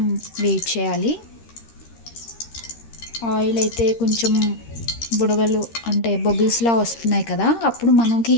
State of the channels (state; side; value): late; right; 13 ms